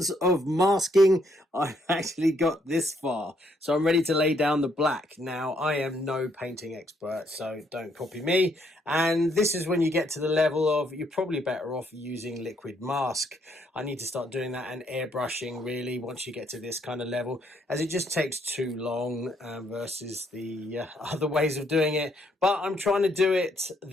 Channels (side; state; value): both; normal; correlation 0.71